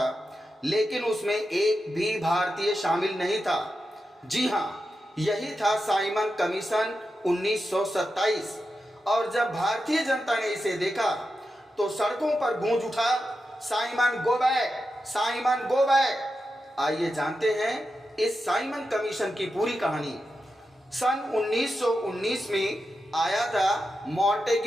लेकिन उसमें एक भी भारतीय शामिल नहीं था। जी हाँ, यही था साइमन कमीशन 1927। और जब भारतीय जनता ने इसे देखा तो सड़कों पर गूंज उठा, Simon go back, Simon go back. आइए जानते हैं इस साइमन कमीशन की पूरी कहानी। सन 1919 में आया था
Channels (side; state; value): both; normal; correlation 0.89